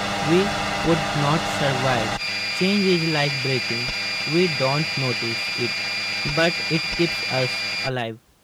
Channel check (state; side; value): identical; both; correlation 1.00